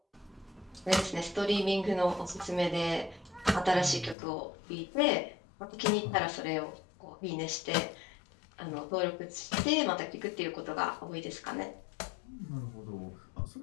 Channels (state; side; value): drops out; right; at 4.2 s